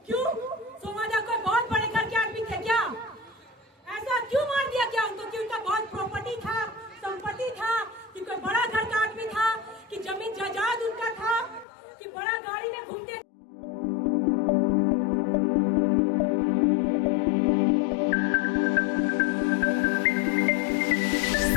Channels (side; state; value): right; drops out; at 11.7 s